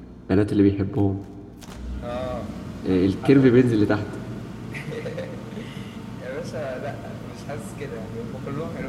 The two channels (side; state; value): both; identical; correlation 1.00